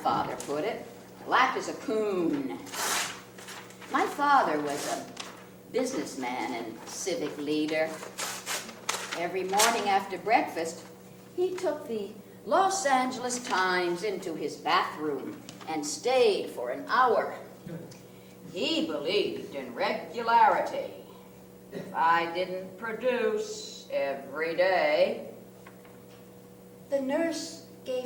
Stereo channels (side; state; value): both; identical; correlation 1.00